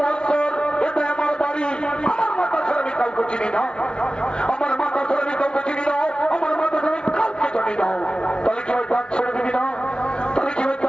এটা আমার বাড়ি, আমার মাতা ছাড়া আমি কাউকে চিনি না, আমার মাতা ছাড়া আমি কাউকে চিনি না, আমার মাতা ছাড়া আমি কাউকে জানি না। তাহলে কি হয় দাঁত ছেড়ে দিবি না? তাহলে কি হয়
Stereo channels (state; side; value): late; right; 0.055 ms